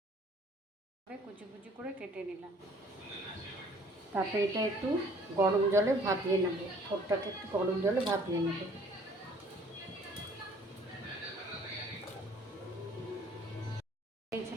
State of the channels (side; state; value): both; normal; correlation 0.56